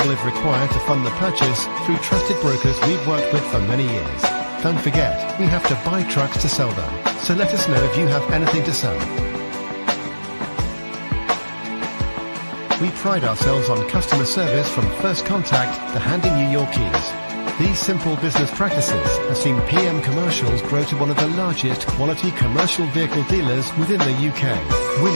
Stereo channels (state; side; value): inverted; both; correlation -1.00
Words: if required to fund the purchase through trusted brokers we've worked with for many years. Don't forget, we have to buy trucks to sell them, so let us know if you have anything to sell. We pride ourselves on customer service from first contact to handing you your keys. These simple business practices have seen PM Commercials grow to one of the largest quality commercial vehicle dealers within the UK,